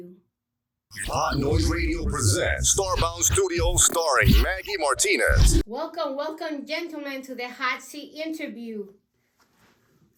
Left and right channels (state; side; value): identical; both; correlation 1.00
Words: Hot Noise Radio presents Starbound Studios starring Maggy Martinez. Welcome, gentlemen, to the Hot Seat Interview.